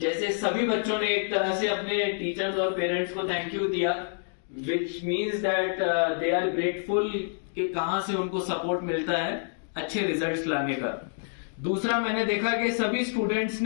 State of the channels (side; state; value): right; silent; digital silence